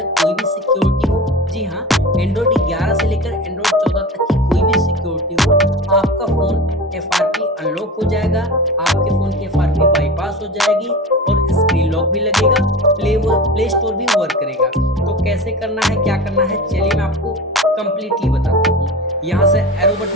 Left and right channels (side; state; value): both; normal; correlation 0.31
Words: कोई भी सिक्योरिटी हो, जी हाँ, एंड्रॉयड 11 से लेकर एंड्रॉयड 14 तक की कोई भी सिक्योरिटी हो, आपका फ़ोन एफआरपी अनलॉक हो जाएगा, आपके फ़ोन की एफआरपी बाईपास हो जाएगी और स्क्रीन लॉक भी लगेगा, प्ले स्टोर भी वर्क करेगा। तो कैसे करना है, क्या करना है, चलिए मैं आपको कंप्लीटली बताता हूँ। यहाँ से एरो